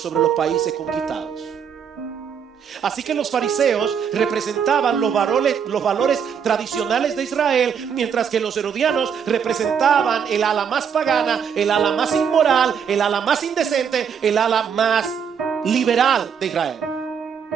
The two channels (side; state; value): left; quieter; 7.3 dB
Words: los países conquistados. Así que los fariseos representaban los valores tradicionales de Israel, mientras que los herodianos representaban el ala más pagana, el ala más inmoral, el ala más indecente, el ala más liberal de Israel.